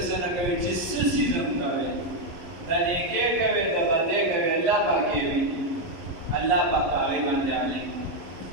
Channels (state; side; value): late; left; 11 ms